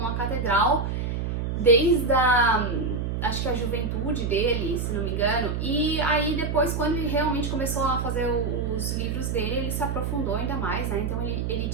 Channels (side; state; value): right; noise; hum, 2 dB below the sound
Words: a catedral desde acho que a juventude dele, se não me engano, e aí depois, quando ele realmente começou a fazer os livros dele, ele se aprofundou ainda mais, né, então ele